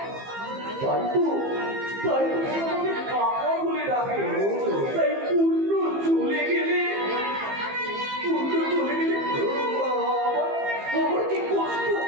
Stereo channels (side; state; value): left; late; 15 ms